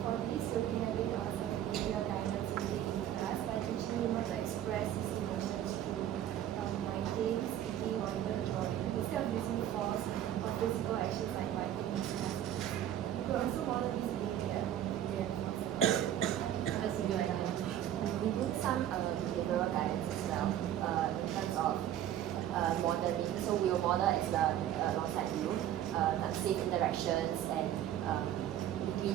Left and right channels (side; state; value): left; quieter; 11.4 dB